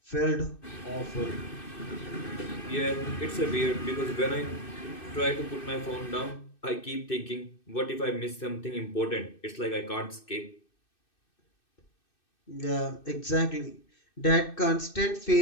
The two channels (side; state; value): right; late; 2.6 ms